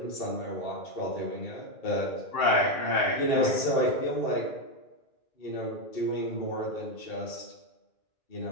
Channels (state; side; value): late; right; 2.3 ms